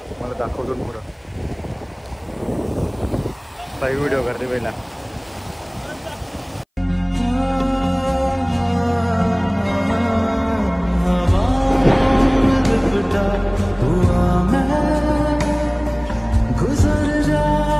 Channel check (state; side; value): identical; both; correlation 1.00